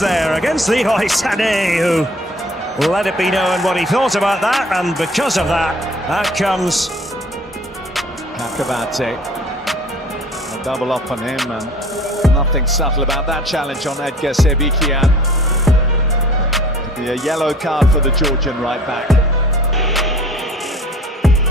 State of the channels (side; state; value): both; normal; correlation 0.50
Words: against Leroy Sané, who let it be known what he thought about that, and because of that, out comes Akabate. A double up on him, and nothing subtle about that challenge on Edgar Sebikian. Be a yellow card for the Georgian right back.